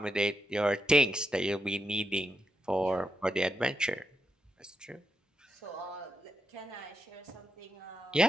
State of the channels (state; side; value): normal; both; correlation 0.84